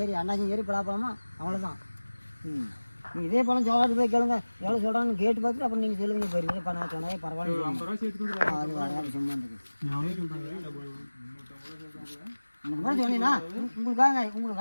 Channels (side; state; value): both; inverted; correlation -1.00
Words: அண்ணாச்சி ஏறி பலாப்பழமா அவ்வளோதான். நீங்கள் இதே பழம் சோழாட்டு போய் கேளுங்க, எவ்வளோ சொல்கிறாங்கன்னு கேட்டு பார்த்துட்டு அப்புறம் நீங்கள் சொல்லுவீங்க. போயிருங்க இப்போ நான் சொன்னாலே பரவாயில்ல. அது வராது சும்மா இருந்துக்கு. அப்புறம் சொன்னீங்கன்னா